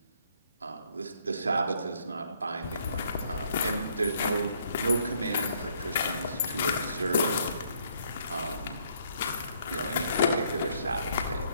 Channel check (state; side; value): inverted; both; correlation -0.67